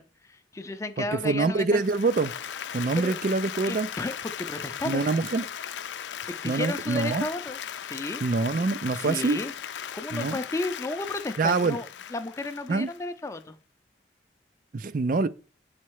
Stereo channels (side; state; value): both; normal; correlation 0.41